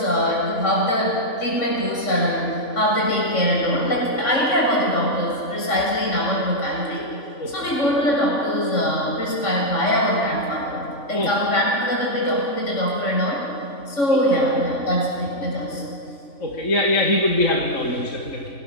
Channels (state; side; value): late; right; 3.5 ms